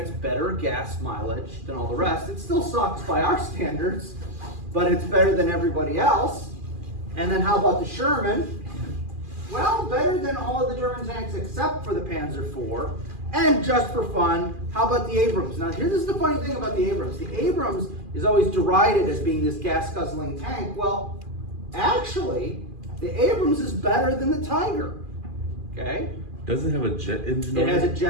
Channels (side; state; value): left; late; 2.4 ms